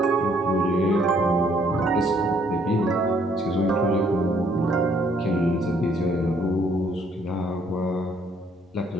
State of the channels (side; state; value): both; normal; correlation 0.65